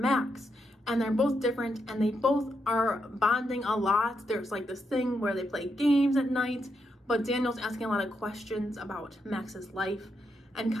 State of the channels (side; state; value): both; normal; correlation 0.82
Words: and they're both different, and they both are bonding a lot. There's like this thing where they play games at night, but Daniel's asking a lot of questions about Max's life and